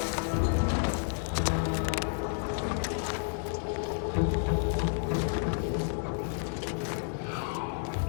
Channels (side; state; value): right; silent; digital silence